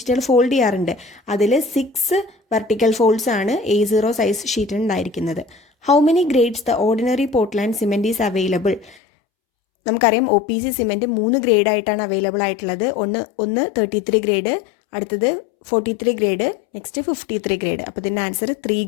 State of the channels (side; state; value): right; drops out; at 9.0 s